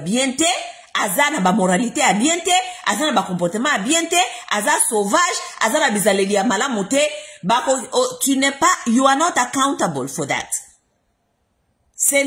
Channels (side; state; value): both; identical; correlation 1.00